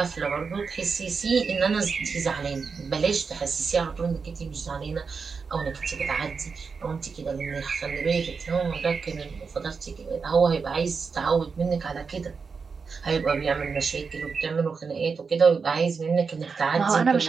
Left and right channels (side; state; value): left; quieter; 5.2 dB